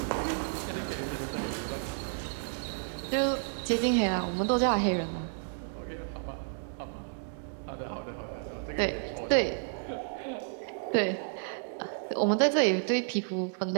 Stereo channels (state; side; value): silent; left; digital silence